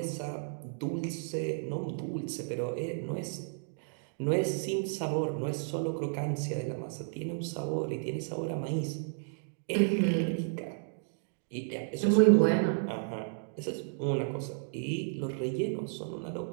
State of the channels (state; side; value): silent; left; digital silence